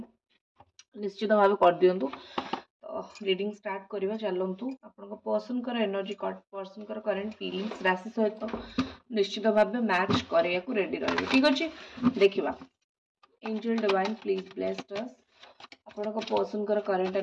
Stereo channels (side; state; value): both; identical; correlation 1.00